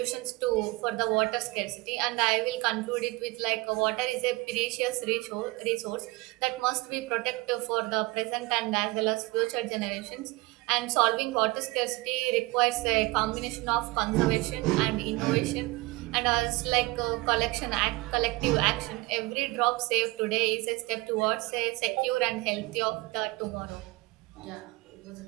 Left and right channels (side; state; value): left; quieter; 22.4 dB